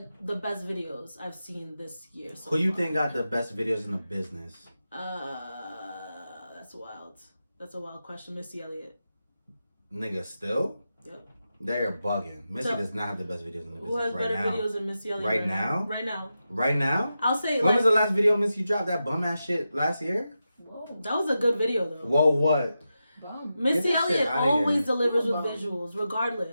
the best videos I've seen this year. So who you think got the best videos in the business? That's wild. That's a wild question. Missy Elliott. Nigga, still? Yep. They're bugging. Missy does not have the best videos in the business. Who has better videos than Missy Elliott? Right now? Right now. Right now? I'll say. When was the last video Missy dropped? That bum ass shit last year? Whoa. That was a good video though. Whoa, what? Bum. Missy Elliott always delivers with visuals,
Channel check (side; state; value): both; inverted; correlation -0.90